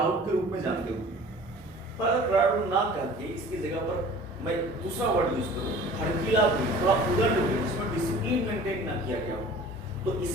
के रूप में जानते होंगे, पर अगर क्राउड ना करके इसकी जगह पर मैं दूसरा वर्ड यूज करूं, भड़कीला भीड़, थोड़ा उदंड भीड़, जिसमें डिसिप्लिन मेंटेन ना किया गया हो, तो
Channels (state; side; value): normal; both; correlation 0.45